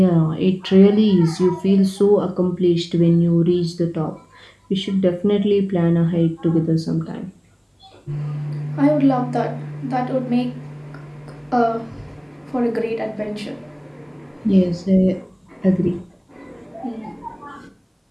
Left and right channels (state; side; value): identical; both; correlation 1.00